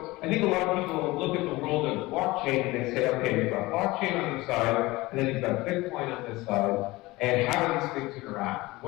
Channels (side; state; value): right; quieter; 20.6 dB